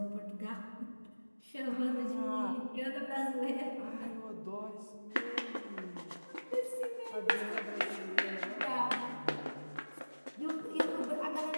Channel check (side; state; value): both; inverted; correlation -1.00